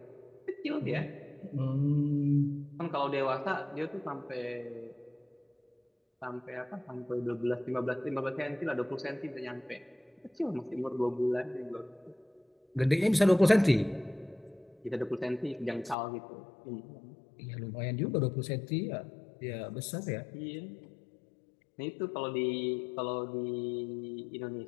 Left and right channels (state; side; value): drops out; right; at 16.0 s